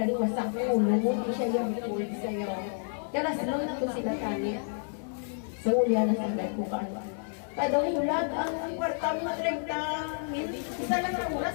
wasak ko ulo mo di siya yung record sa'yo kaya slow na to sila tani sa ulya na sa bed ko paano kada ulag ang kwarta mo 30 isa lang ang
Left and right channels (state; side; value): silent; right; digital silence